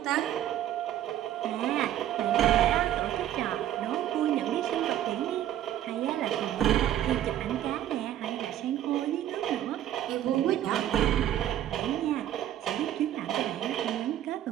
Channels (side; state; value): left; quieter; 11.9 dB